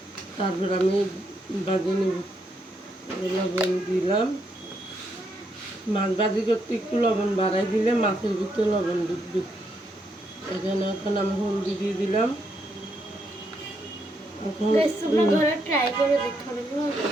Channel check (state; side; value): normal; both; correlation 0.77